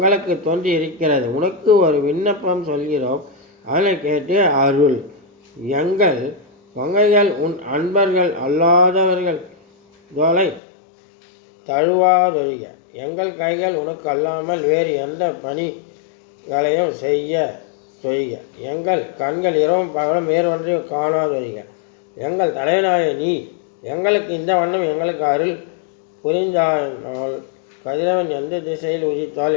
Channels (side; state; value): right; drops out; at 10.6 s